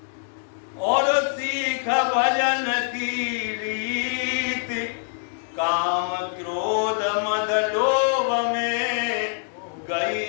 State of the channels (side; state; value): right; silent; 61 dB below the other